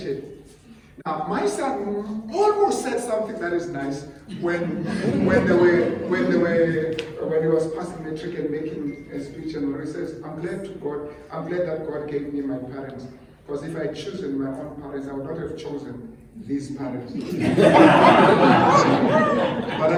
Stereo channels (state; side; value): identical; both; correlation 1.00